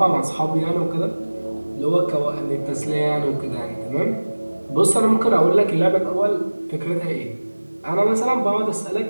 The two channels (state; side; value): inverted; both; correlation -1.00